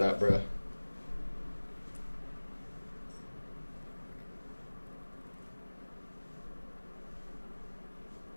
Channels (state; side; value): inverted; both; correlation -1.00